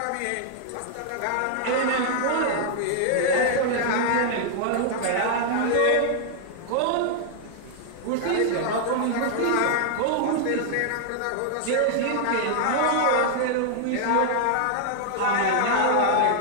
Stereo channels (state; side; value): different; both; correlation -0.01